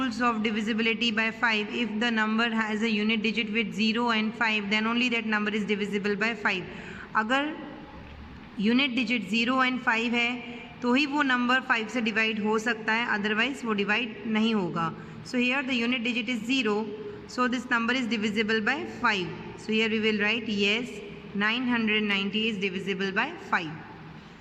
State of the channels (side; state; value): both; identical; correlation 1.00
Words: of divisibility by 5, if the number has a unit digit with 0 and 5, then only that number is divisible by 5. अगर unit digit 0 and 5 है तो ही वो number 5 से divide हो सकता है, otherwise वो divide नहीं होगा. So here the unit digit is 0, so this number is divisible by 5. So here we will write yes, 990 is divisible by 5.